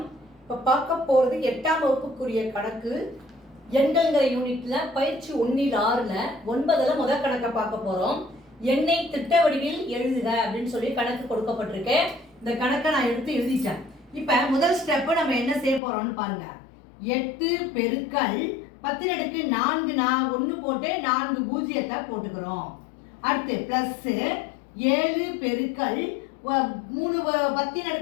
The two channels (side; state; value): right; drops out; at 15.8 s